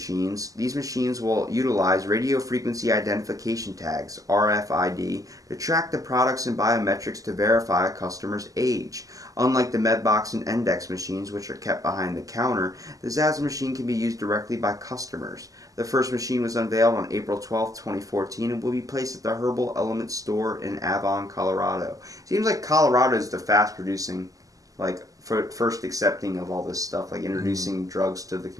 These machines will utilize radio frequency identification tags, RFID, to track the products and biometrics to verify a customer's age. Unlike the Medbox and Index machines, which are kept behind the counter, the ZAZ machine can be used directly by customers. The first machine was unveiled on April 12, 2014, and will be placed at the Herbal Element store in Avon, Colorado. Seems like Colorado is the fast-producing, like, first accepting of all this stuff, like introducing drugs to the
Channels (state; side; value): late; left; 0.17 ms